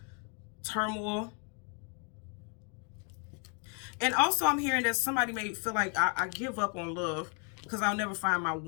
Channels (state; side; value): quieter; right; 37.5 dB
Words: turmoil. And also I'm hearing that somebody may feel like I give up on love because I'll never find my